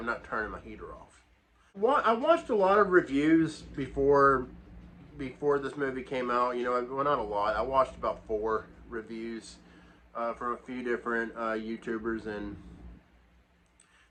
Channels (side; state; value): both; identical; correlation 1.00